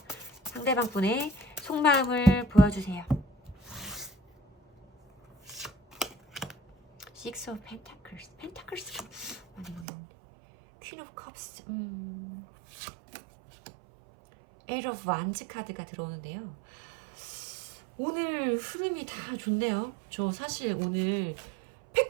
상대방 분의 속마음을 보여주세요. Six of Pentacles. 펜타클스 많이 보이는데. Queen of Cups. Eight of Wands 카드가 들어오는데요. 오늘 흐름이 다 좋네요. 저 사실 오늘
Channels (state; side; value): drops out; left; at 9.9 s